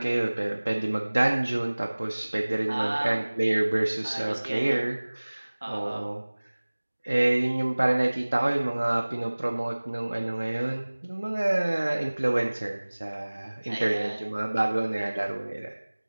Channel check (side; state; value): both; inverted; correlation -1.00